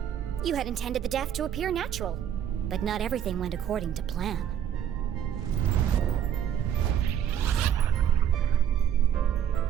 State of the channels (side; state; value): left; quieter; 9.6 dB